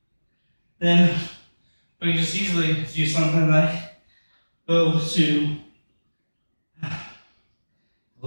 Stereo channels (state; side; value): inverted; both; correlation -1.00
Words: then we can just easily do something like go to, I